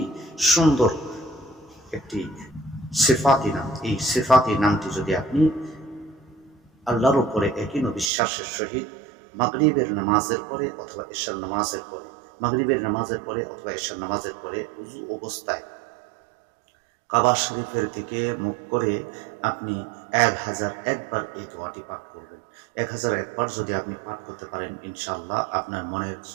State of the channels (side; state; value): left; drops out; at 8.1 s